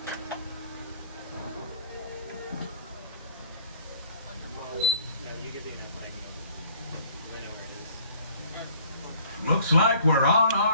Looks like we're on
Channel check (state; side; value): inverted; both; correlation -0.55